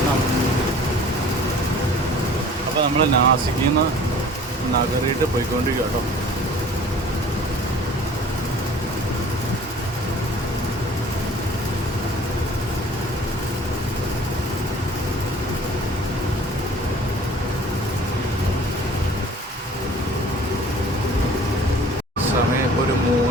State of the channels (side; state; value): both; normal; correlation 0.48